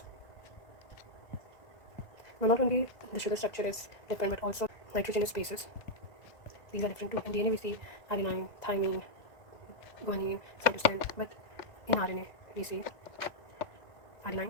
Now not only the sugar structure is different, but also nitrogenous bases, these are different too. In DNA we see adenine, thymine, guanine, cytosine, but in RNA we see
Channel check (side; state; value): right; late; 2.0 ms